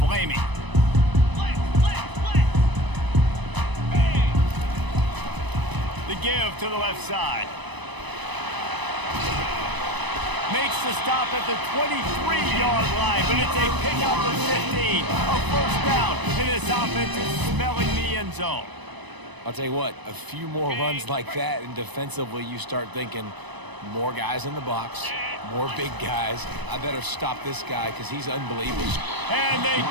The give to the left side. Makes the stop at the 23-yard line, but it's a pickup of 15. A first down, and this offense is smelling the end zone. I'll tell you what, a few more runs like that, and defensively you start thinking, more guys in the box, more big guys. I better stop this guy because he's unbelievable. And they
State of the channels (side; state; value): left; late; 1.0 ms